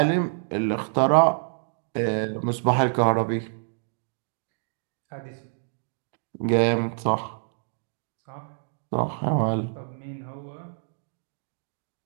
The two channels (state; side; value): silent; left; digital silence